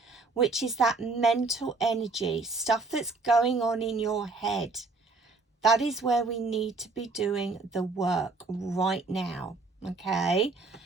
which is that mental energy, stuff that's going on in your head. That is where we need to be doing the work right now, okay?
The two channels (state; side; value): quieter; left; 3.7 dB